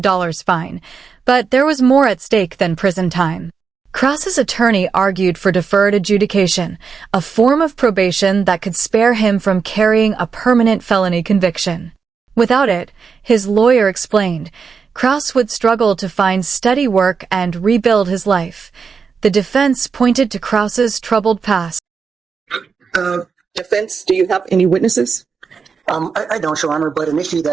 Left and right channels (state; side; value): quieter; left; 5.7 dB